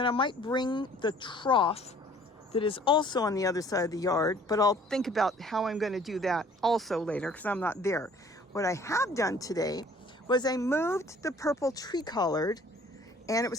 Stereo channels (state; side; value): normal; both; correlation 0.54